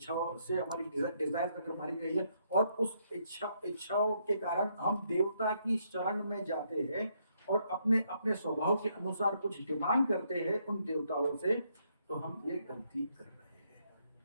से हमारी डिजायर अगर मारी गई है और उस इच्छाओं के कारण हम देवता की शरण में जाते हैं और अपने अपने स्वभाव के अनुसार कुछ डिमांड करते हैं उन देवताओं से, तो हम ये गलती कर रहे हैं।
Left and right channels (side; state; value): both; inverted; correlation -0.74